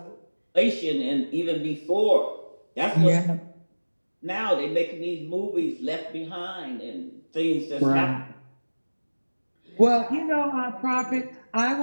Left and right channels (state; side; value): inverted; both; correlation -1.00